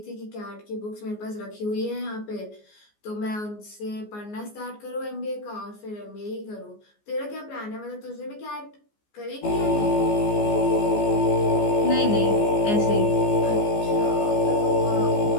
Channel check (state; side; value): late; right; 14 ms